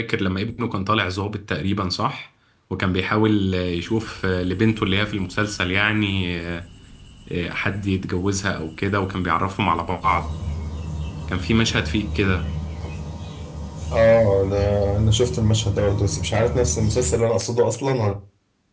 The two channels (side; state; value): both; identical; correlation 1.00